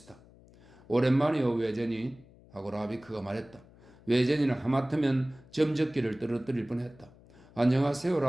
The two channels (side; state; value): left; noise; hum, 25 dB below the sound